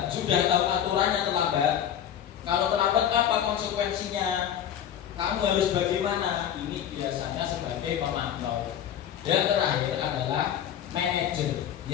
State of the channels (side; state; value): right; quieter; 9.8 dB